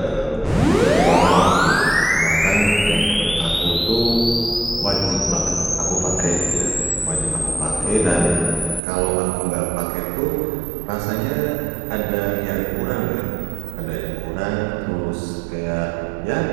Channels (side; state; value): left; drops out; at 8.8 s